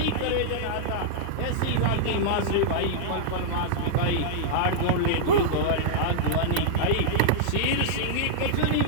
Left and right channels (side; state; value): both; different; correlation -0.02